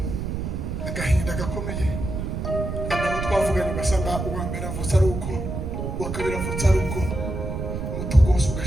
Agahinda gakomeye. Nabo twavuganye basanga uwa mbere avutse ari uko uwa kabiri avutse ari uko umutungo wose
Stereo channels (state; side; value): noise; right; rumble, 4 dB below the sound